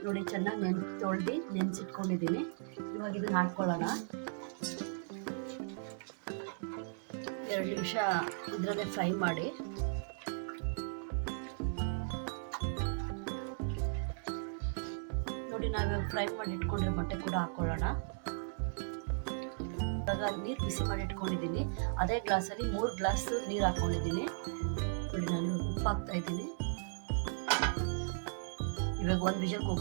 ನೋಡಿ, ಚೆನ್ನಾಗಿ ತೊಳೆದು ನೆನೆಸಿಟ್ಕೊಂಡಿದ್ದೀನಿ. ಇವಾಗ ಇದನ್ನು ಹಾಕ್ಕೊಳ್ಳೋಣ. 2 ನಿಮಿಷ ಇದರಲ್ಲೇ ಫ್ರೈ ಮಾಡಿ. ನೋಡಿ, ನಾವಿವಾಗ ಫ್ರೈ ಮಾಡಿ ಇಟ್ಕೊಂಡ್ರೆ ಮೊಟ್ಟೆ ಕೂಡ ಹಾಕ್ಕೊಳ್ಳೋಣ. ಇವಾಗ ನೀರು ಬಿಸಿ ಮಾಡಿ ಇಟ್ಕೊಂಡಿದ್ದೀನಿ. ಅದೇ ಗ್ಲಾಸಲ್ಲಿ 3 ಗ್ಲಾಸ್ ನೀರು ಹಾಕ್ಕೊಂಡಿದ್ದೀನಿ. ನೋಡಿ, ನಾನು ಇವಾಗ ಉಪ್ಪು ಹಾಕ್ತಾ ಇದ್ದೀನಿ. ಇವಾಗ 1 ವಿಷಲ್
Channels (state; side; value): silent; left; digital silence